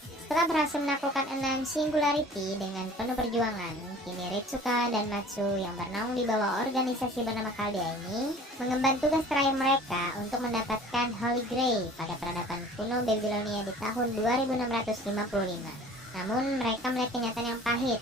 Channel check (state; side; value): normal; both; correlation 0.47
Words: Setelah berhasil menaklukkan 6 Singularity dengan penuh perjuangan, kini Ritsuka dan Matsu yang bernaung di bawah organisasi bernama Caldea ini mengemban tugas terakhir mereka untuk mendapatkan Holy Grail pada peradaban kuno Babylonia di tahun 2655. Namun mereka melihat kenyataan yang pahit